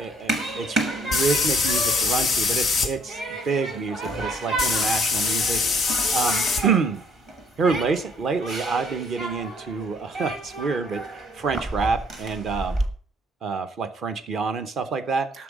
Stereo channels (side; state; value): both; normal; correlation 0.62